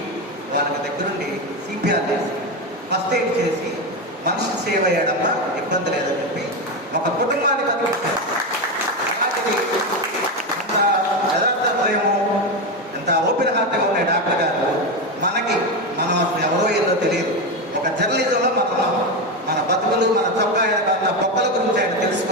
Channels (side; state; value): both; normal; correlation 0.14